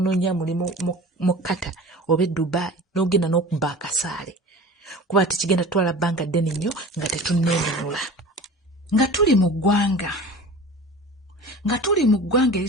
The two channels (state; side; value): normal; both; correlation 0.38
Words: mulimu mu Qatar oba Dubai n'ogenda n'okubba akasaale. Kuba tekigenda tutwala bbanga ddene nnyo nga tetunneenunula. nga tuli mu ggwanga